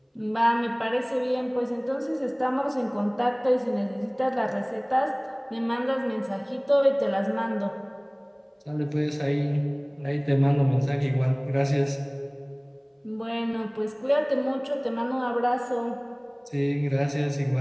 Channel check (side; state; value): both; identical; correlation 1.00